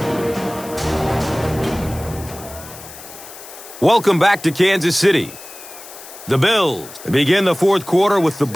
Welcome back to Kansas City. The Bills begin the 4th quarter with the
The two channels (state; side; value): noise; left; hiss, 16 dB below the sound